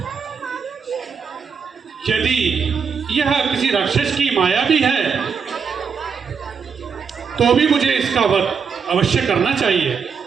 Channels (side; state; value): left; quieter; 6.2 dB